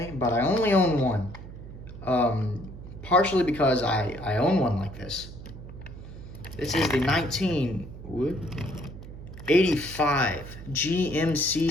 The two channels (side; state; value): right; noise; hum, 13 dB below the sound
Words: but I only own one. Partially because I own one like this. This is the 1985 GMC